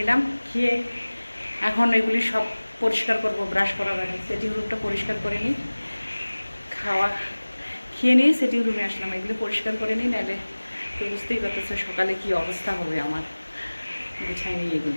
খেয়ে এখন এগুলি সব পরিষ্কার করব ব্রাশ করার আগে। সেটিং রুমটা পরিষ্কার করে নিই, খেয়ে নিয়ে সেটিং রুমে আসলাম। এগুলো পরিষ্কার করে নিই, নাহলে তো বুঝতেই পারতেছে সকালে কি অবস্থা হবে আমার। গুছাই নিই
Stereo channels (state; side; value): inverted; both; correlation -1.00